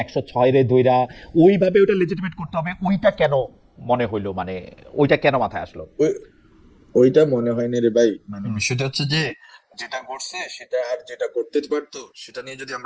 106 রে দইরা ওইভাবে ওইটা লেজিটিমেট করতে হবে, ওইটা কেন মনে হইলো, মানে ওইটা কেন মাথায় আসলো? ওই- ওইটা মনে হয়নি রে ভাই, মানে হুম। বিষয়টা হচ্ছে যে যেটা করছে সেটা আর যেটা করতে পারতো সেটা নিয়ে যদি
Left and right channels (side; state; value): both; identical; correlation 1.00